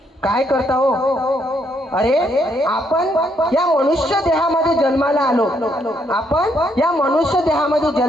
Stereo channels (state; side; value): normal; both; correlation 0.73